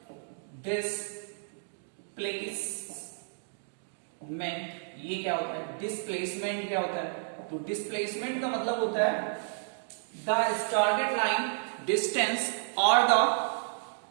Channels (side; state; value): left; silent; digital silence